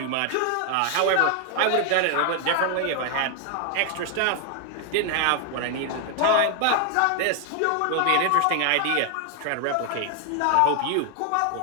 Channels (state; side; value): different; both; correlation 0.00